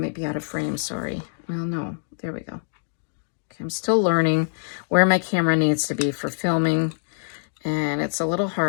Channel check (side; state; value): right; silent; digital silence